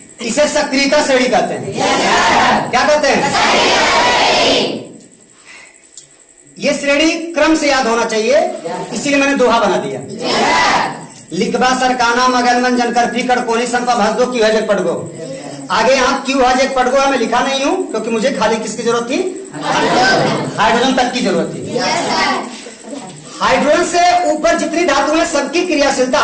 इसे सक्रियता श्रेणी कहते हैं। क्या कहते हैं? ये श्रेणी क्रम से याद होना चाहिए, इसीलिए मैंने दोहा बना दिया। लिखबा सरकाना मगन मन जनकर फिकर कोनी संपा भसदो क्यों है जग पड़गो। आगे यहाँ क्यों है जग पड़गो मैं लिखा नहीं हूं, क्योंकि मुझे खाली किसकी जरूरत थी? हाइड्रोजन तक की जरूरत थी। हाइड्रोजन से ऊपर जितनी धातु है सबकी क्रियाशीलता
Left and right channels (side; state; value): both; identical; correlation 1.00